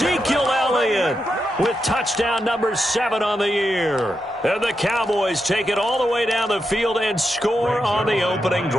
Elliott with touchdown number 7 on the year. And the Cowboys take it all the way down the field and score on the opening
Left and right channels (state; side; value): normal; both; correlation 0.86